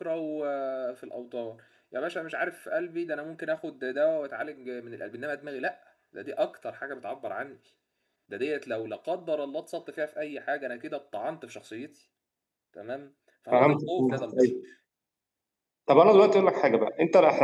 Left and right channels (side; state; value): both; identical; correlation 1.00